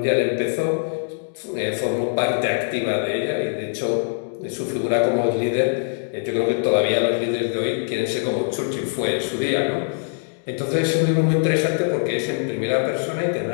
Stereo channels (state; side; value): silent; right; digital silence